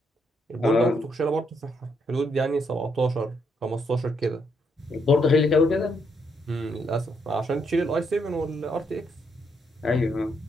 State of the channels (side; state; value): both; normal; correlation 0.75